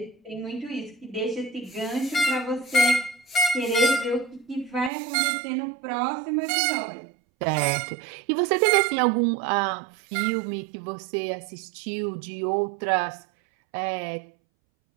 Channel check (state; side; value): drops out; left; at 4.9 s